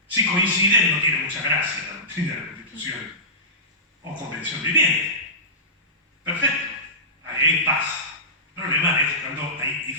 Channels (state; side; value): normal; both; correlation -0.20